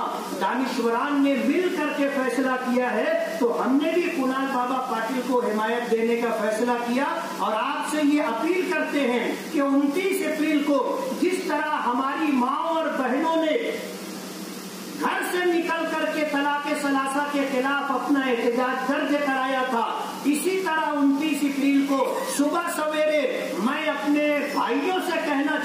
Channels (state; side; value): identical; both; correlation 1.00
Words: دانشوران نے مل کر کے فیصلہ کیا ہے تو ہم نے بھی کنال بابا پاٹل کو حمایت دینے کا فیصلہ کیا، اور آپ سے یہ اپیل کرتے ہیں کہ 29 اپریل کو جس طرح ہماری ماں اور بہنوں نے گھر سے نکل کر کے طلاق ثلاثہ کے خلاف اپنا احتجاج درج کرایا تھا، اسی طرح 29 اپریل کو صبح سویرے میں اپنے بھائیوں سے کہنا